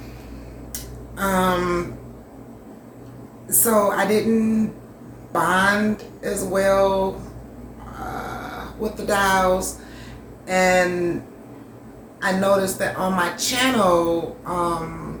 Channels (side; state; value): both; identical; correlation 1.00